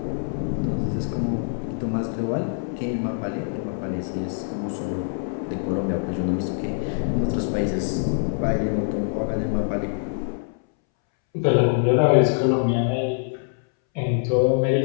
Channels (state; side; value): silent; right; 62 dB below the other